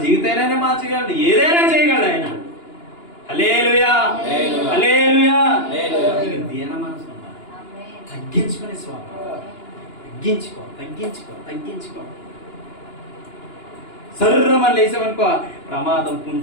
జీవితైనా మార్చగలడు, ఏదైనా చేయగలడు ఆయన. హల్లెలూయా, హల్లెలూయా. దీన మనసు ఉండాలి. తగ్గించుకునే స్వభావం. తగ్గించుకో. సర్రమని లేసామనుకో ప్రమాదం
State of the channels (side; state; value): right; late; 2.9 ms